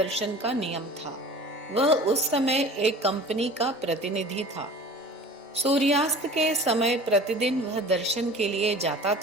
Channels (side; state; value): both; normal; correlation 0.41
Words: का नियम था। वह उस समय एक कंपनी का प्रतिनिधि था। सूर्यास्त के समय प्रतिदिन वह दर्शन के लिए जाता